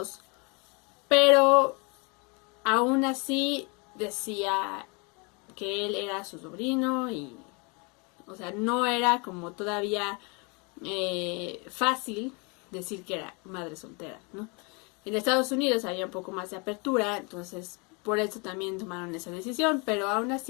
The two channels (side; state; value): right; quieter; 31.6 dB